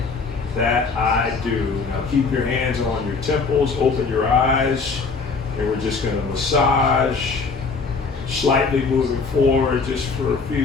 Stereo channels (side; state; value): right; quieter; 4.6 dB